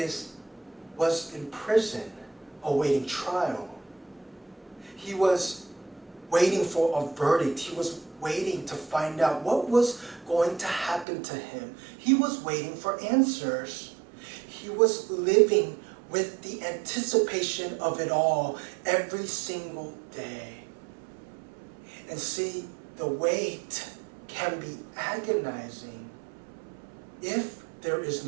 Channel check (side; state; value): left; drops out; at 11.1 s